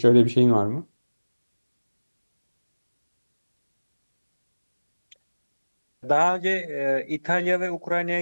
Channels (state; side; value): inverted; both; correlation -1.00